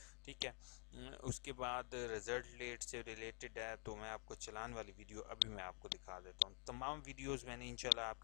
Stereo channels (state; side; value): quieter; right; 37.7 dB